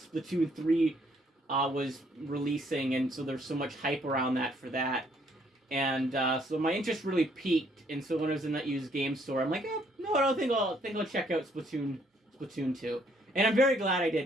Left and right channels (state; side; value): normal; both; correlation 0.67